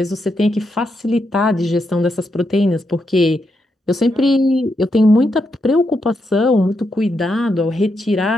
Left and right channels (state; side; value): normal; both; correlation 0.82